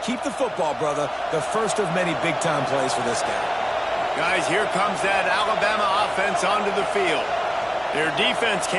Keep the football, brother. The first of many big-time plays for this guy. Guys, here comes that Alabama offense onto the field. Their defense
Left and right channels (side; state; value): both; identical; correlation 1.00